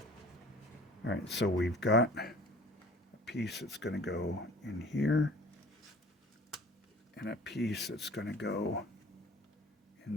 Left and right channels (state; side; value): normal; both; correlation 0.47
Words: All right, so we've got a piece that's going to go in here, and a piece that's going to go